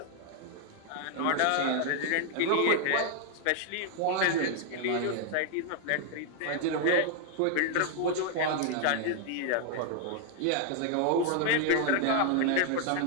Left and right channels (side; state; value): both; different; correlation 0.00